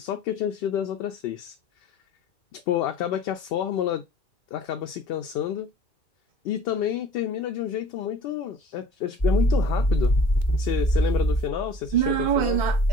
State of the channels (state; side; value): late; right; 2.2 ms